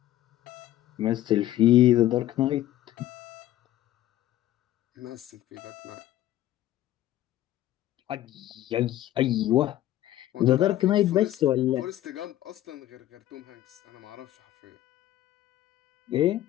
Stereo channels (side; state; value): right; quieter; 13.8 dB